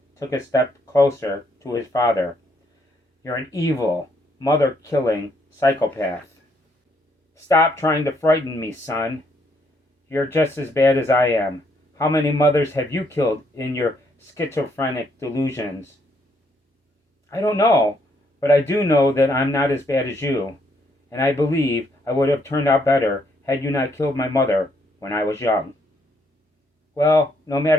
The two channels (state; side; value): normal; both; correlation 0.72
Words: took a step closer to his father. You're an evil, mother-killing psychopath. Stop trying to frighten me, son. You're just as bad as I am. How many mothers have you killed in your schizophrenic delusions? I don't know, but I do know that I'm not as bad as you, and I believe I would have turned out better had you not killed my mother when I was young. Well, no